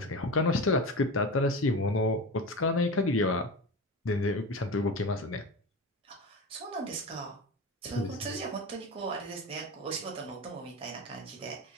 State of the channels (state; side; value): normal; both; correlation 0.27